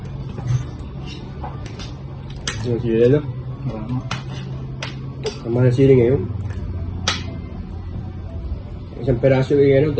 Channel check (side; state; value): both; identical; correlation 1.00